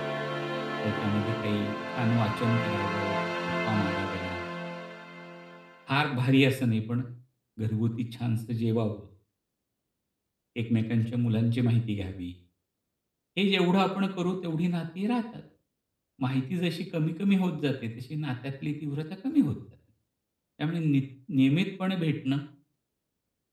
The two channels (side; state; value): both; identical; correlation 1.00